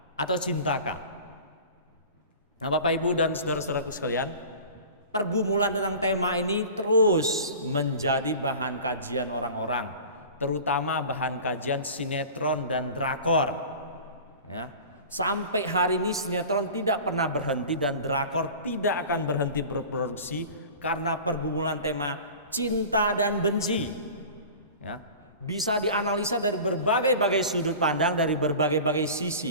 atau cintakah? Nah, Bapak, Ibu, dan saudara-saudaraku sekalian, pergumulan tentang tema ini terus menjadi bahan kajian orang-orang, terutama bahan kajian sinetron dan drakor. Ya. Sampai hari ini sinetron tidak pernah berhenti dan drakor tidak akan berhenti berproduksi karena pergumulan tema cinta dan benci. Ya, bisa dianalisa dari berbagai-bagai sudut pandang, dari berbagai-bagai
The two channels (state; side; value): inverted; both; correlation -0.38